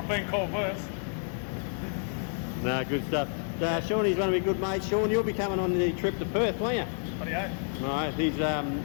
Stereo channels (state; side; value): silent; right; 58 dB below the other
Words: been called worse. No, good stuff. Shawnee's one of my good mates. Sean, you'll be coming on the trip to Perth, won't you? Bloody oath. Right, he's